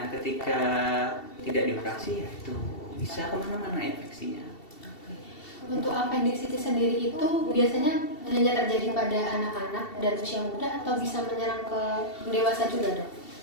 ketika tidak dioperasi ya itu bisa kemana-mana infeksinya. Untuk appendicitis sendiri itu biasanya hanya terjadi pada anak-anak dan usia muda atau bisa menyerang ke dewasa juga dok?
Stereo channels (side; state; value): right; late; 2.7 ms